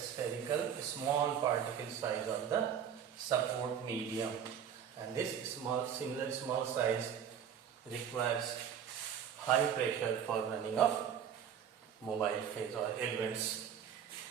small particle size of the support medium, and this similar small size requires high pressure for running of mobile phase or elements.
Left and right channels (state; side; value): quieter; left; 8.5 dB